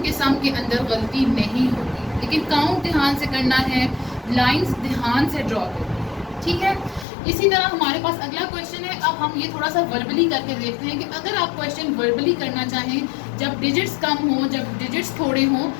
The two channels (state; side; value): drops out; right; at 7.1 s